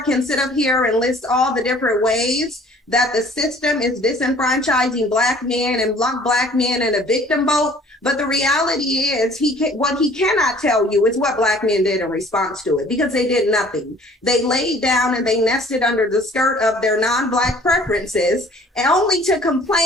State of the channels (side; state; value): both; normal; correlation 0.53